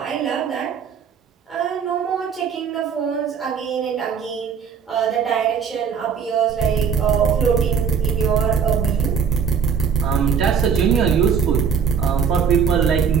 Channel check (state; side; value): quieter; left; 6.7 dB